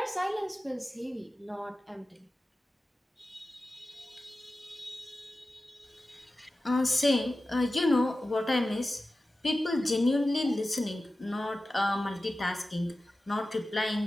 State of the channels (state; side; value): normal; both; correlation 0.94